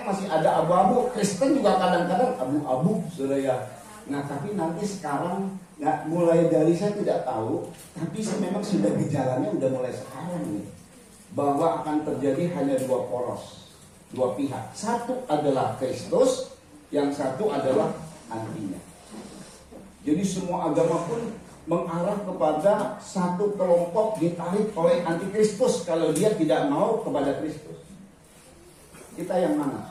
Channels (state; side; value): identical; both; correlation 1.00